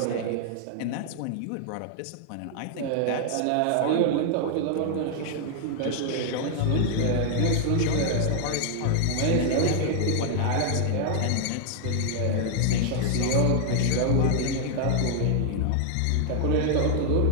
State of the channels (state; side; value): different; both; correlation 0.00